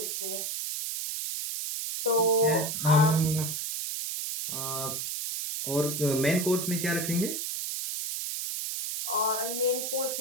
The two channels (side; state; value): right; noise; hiss, 3 dB below the sound